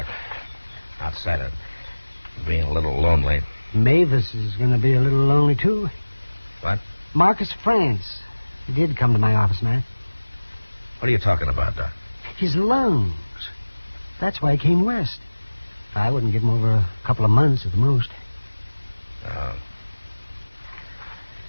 Outside of being a little lonely. Mavis is going to be a little lonely, too. What? Marcus France. He did come to my office, man. What are you talking about, Doc? His lungs. That's why he came west. I wouldn't give him over a couple of months at the most.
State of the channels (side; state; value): both; inverted; correlation -1.00